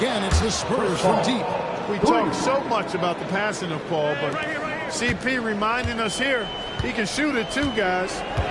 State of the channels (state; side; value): identical; both; correlation 1.00